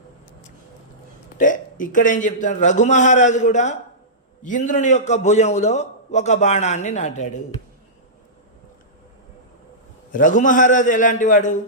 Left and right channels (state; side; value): normal; both; correlation -0.18